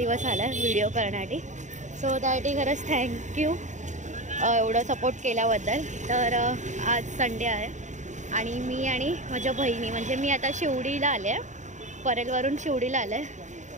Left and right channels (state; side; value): late; left; 0.35 ms